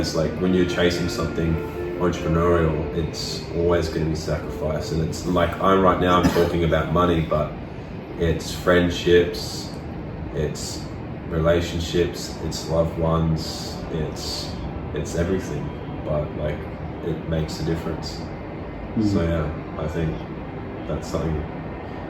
like, when you're chasing something entrepreneurial, it's always going to be sacrifice. And it's like, I'm talking about money, but it's friendships, it's relationships, it's loved ones, it's everything, but like, it makes a difference. So I think that's something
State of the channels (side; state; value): both; identical; correlation 1.00